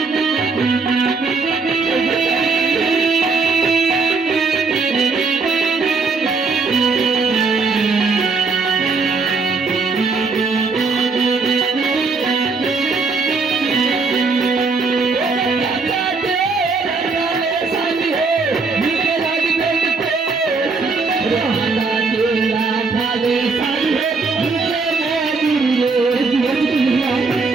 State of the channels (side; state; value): left; quieter; 4.3 dB